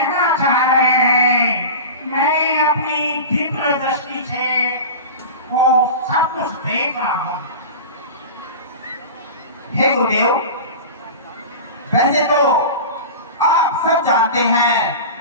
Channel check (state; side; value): inverted; both; correlation -0.31